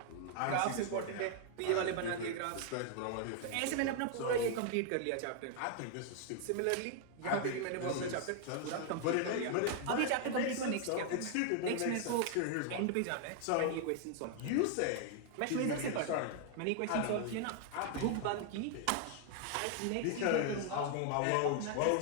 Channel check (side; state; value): both; different; correlation 0.00